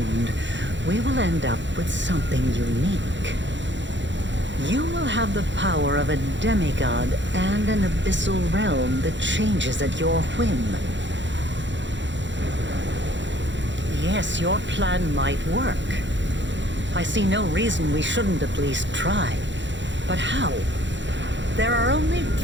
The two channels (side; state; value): left; late; 0.53 ms